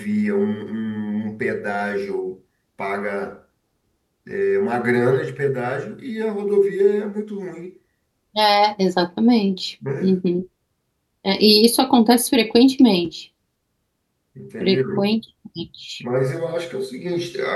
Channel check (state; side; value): identical; both; correlation 1.00